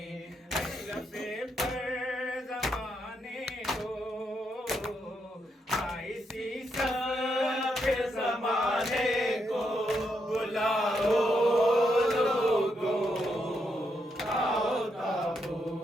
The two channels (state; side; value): normal; both; correlation 0.80